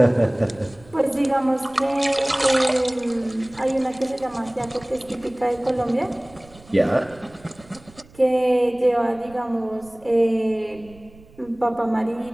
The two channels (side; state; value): right; noise; rumble, 24 dB below the sound